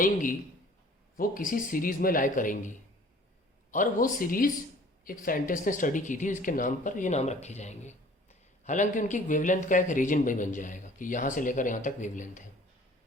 वो किसी सीरीज़ में लाई करेंगी, और वो सीरीज़ एक साइंटिस्ट ने स्टडी की थी, इसके नाम पर ये नाम रखे जाएंगे. हालांकि उनकी वेवलेंथ का एक रीजन भी बन जाएगा कि यहाँ से लेकर यहाँ तक वेवलेंथ है.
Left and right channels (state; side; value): normal; both; correlation 0.51